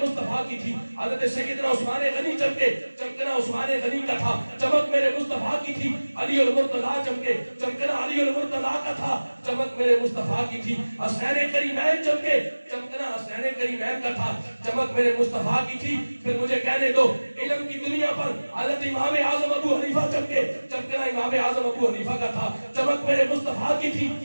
مصطفیٰ کی تھی. حضرت سیدنا عثمان غنی چمکے, چمکنا عثمان غنی کا تھا, چمک میرے مصطفیٰ کی تھی. علی المرتضیٰ چمکے, چمکنا علی المرتضیٰ کا تھا, چمک میرے مصطفیٰ کی تھی. حسین کریمین چمکے, چمکنا حسین کریمین کا تھا, چمک میرے مصطفیٰ کی تھی. پھر مجھے کہنے دو علم کی دنیا پر حضرت امام اعظم ابو حنیفہ چمکے, چمکنا امام اعظم ابو حنیفہ کا تھا, چمک میرے مصطفیٰ کی تھی.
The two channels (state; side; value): inverted; both; correlation -1.00